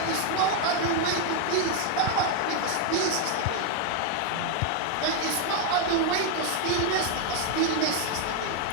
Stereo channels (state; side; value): different; both; correlation 0.00